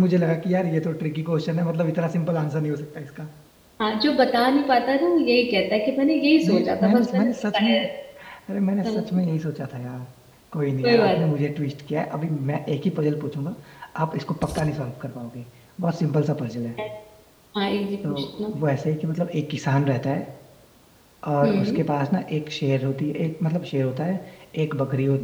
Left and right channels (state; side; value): identical; both; correlation 1.00